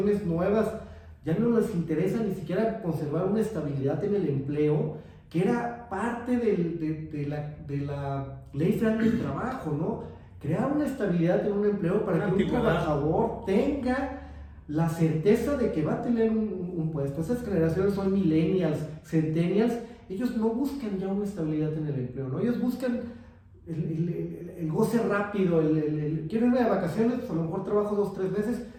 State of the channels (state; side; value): identical; both; correlation 1.00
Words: nuevas ya no les interesa ni siquiera conservar una estabilidad en el empleo, que era parte de la ley federal del trabajo, ¿no? Crear una estabilidad en un empleo para que un trabajador tenga la certeza de que va a tener un puesto. Esas generaciones son millennials, centennials. Ellos no buscan ya una estabilidad en el empleo, ¿no? Ellos buscan el goce rápido, quiero irme de vacaciones, pues a lo mejor trabajo 2 o 3 meses,